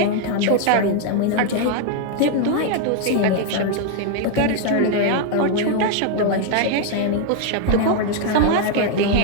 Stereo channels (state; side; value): different; both; correlation 0.01